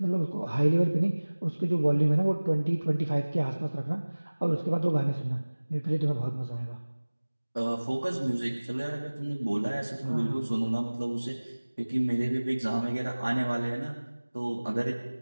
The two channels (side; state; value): both; inverted; correlation -1.00